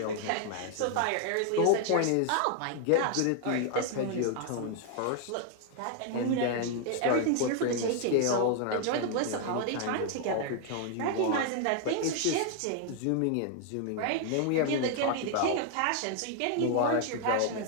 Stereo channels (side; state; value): both; different; correlation 0.00